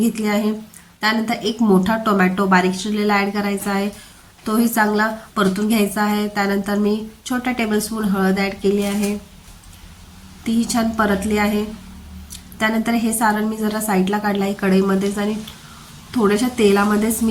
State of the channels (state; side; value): identical; both; correlation 1.00